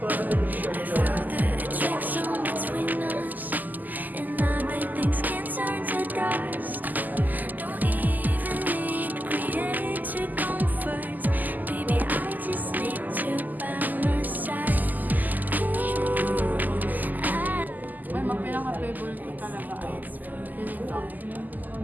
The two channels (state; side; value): late; left; 0.084 ms